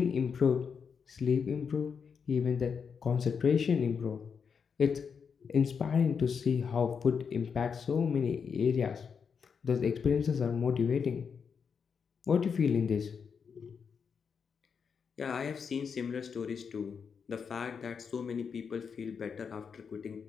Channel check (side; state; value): right; quieter; 6.3 dB